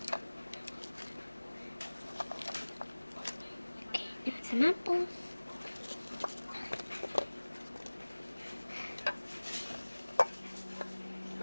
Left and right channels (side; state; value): both; inverted; correlation -1.00